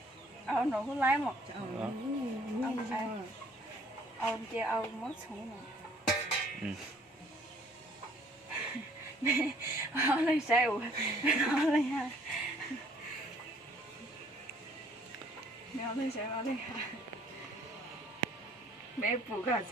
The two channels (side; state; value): both; normal; correlation 0.59